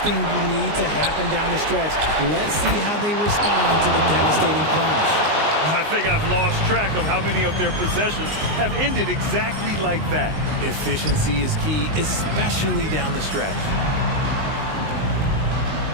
thing you need to happen down the stretch. Let's see how they respond to the devastating plunge. I think I've lost track of how many of their possessions have ended exactly like that. Efficiency is key, especially down the stretch.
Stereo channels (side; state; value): left; late; 19 ms